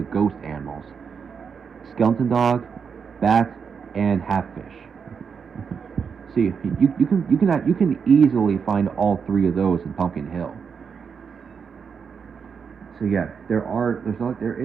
ghost animals: skeleton dog, bat, and half-fish. See, you can easily find all three of those in Pumpkin Hill. So yeah, there are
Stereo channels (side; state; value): left; quieter; 6.3 dB